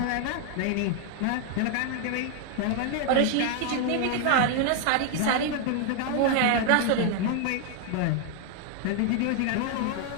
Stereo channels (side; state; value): both; different; correlation 0.00